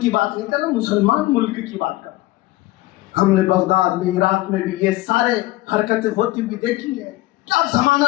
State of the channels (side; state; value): right; quieter; 18.2 dB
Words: کی بات نہیں کر رہا، مسلمان ملک کی بات کر رہا۔ ہم نے بغداد میں، عراق میں بھی یہ سارے حرکتیں ہوتی ہوئی دیکھی ہیں۔ کیا